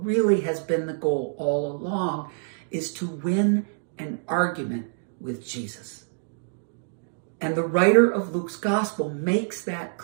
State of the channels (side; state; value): left; silent; digital silence